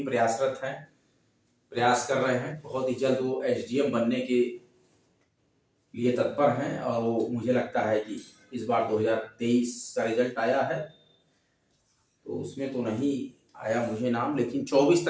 प्रयासरत हैं, प्रयास कर रहे हैं। बहुत ही जल्द वो एसडीएम बनने के लिए तत्पर हैं, और वो मुझे लगता है कि इस बार 2023 का रिजल्ट आया है, तो उसमें तो नहीं आया मुझे नाम, लेकिन 24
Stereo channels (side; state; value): both; identical; correlation 1.00